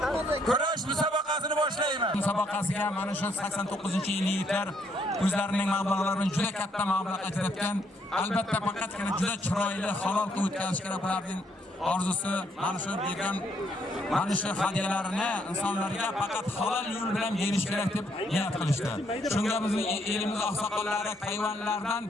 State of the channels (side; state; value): both; normal; correlation 0.72